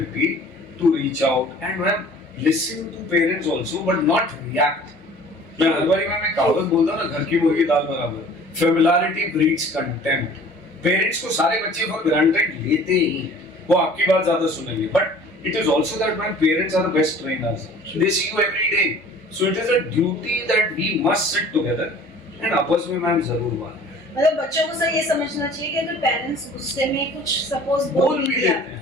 to reach out and listen to parents also, but not react. मैं हर बारी मैं कहावत बोलता हूँ ना, घर की मुर्गी दाल बराबर. Familiarity breeds contempt. पेरेंट्स को सारे बच्चे फॉर ग्रांटेड लेते ही हैं, वो आपकी बात ज्यादा सुनेंगे, but it is also that man parents are the best trainers, they see you every day, so it is a duty that we must sit together and आपस में मैम जरूर बात. मतलब बच्चों को सर ये समझना चाहिए कि अगर पेरेंट्स गुस्से में कुछ सपोज बोल भी दिया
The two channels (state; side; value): normal; both; correlation 0.48